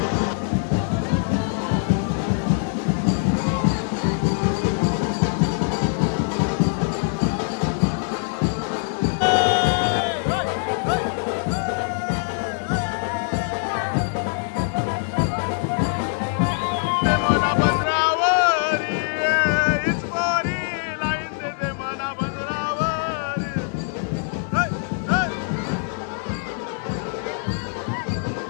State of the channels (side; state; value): right; silent; 63 dB below the other